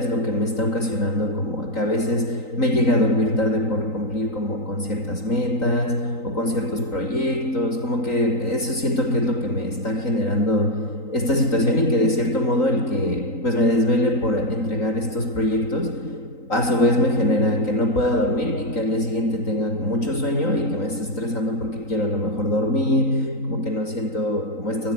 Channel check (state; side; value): late; right; 3.9 ms